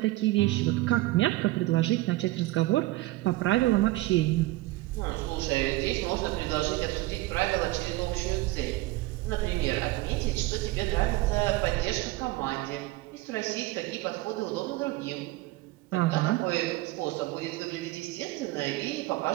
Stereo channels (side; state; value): left; quieter; 18.8 dB